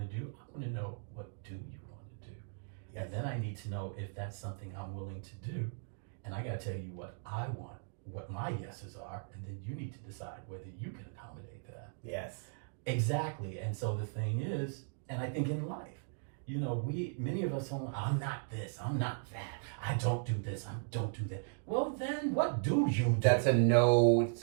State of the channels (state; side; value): silent; left; digital silence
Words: do. I want to know, what do you want to do? And then I need to know if that's something I'm willing to do. And I got to tell you what I want, what my yeses are, and then you need to decide whether you can accommodate that. Yes. Exactly. And so the thing is, and I think in life, you know, many of us are, I'm not this, I'm not that, I don't do this, I don't do that. Well, then what do you do? That's it's